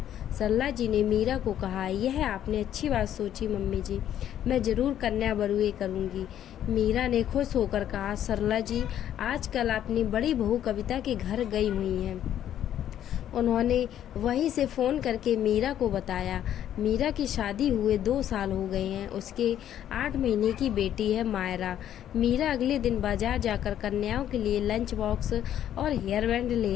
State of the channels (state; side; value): quieter; right; 10.8 dB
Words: सरला जी ने मीरा को कहा, यह आपने अच्छी बात सोची मम्मी जी, मैं जरूर कन्या बरुए करूंगी। मीरा ने खुश होकर कहा, सरला जी आजकल अपनी बड़ी बहू कविता के घर गई हुई हैं। उन्होंने वहीं से फ़ोन करके मीरा को बताया। मीरा की शादी हुए 2 साल हो गए हैं। उसके 8 महीने की बेटी है मायरा। मीरा अगले दिन बाजार जाकर कन्याओं के लिए लंच बॉक्स और हेयर बैंड